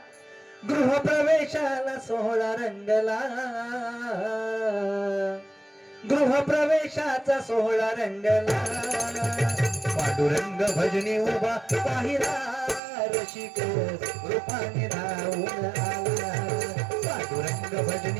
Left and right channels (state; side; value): drops out; left; at 12.8 s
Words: गृहप्रवेशाला सोहळा रंगला, गृहप्रवेशाचा सोहळा रंगला. पांडुरंग भजनी उभा पाहिला, रसिक रूपाने धावून आला. पांडुरंग